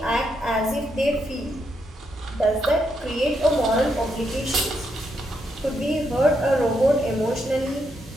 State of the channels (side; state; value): both; normal; correlation 0.79